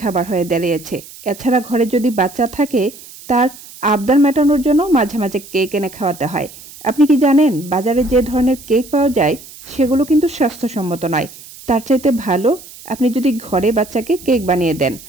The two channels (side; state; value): right; noise; hiss, 18 dB below the sound